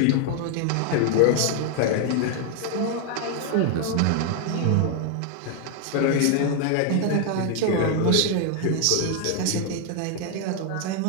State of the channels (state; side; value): different; both; correlation 0.01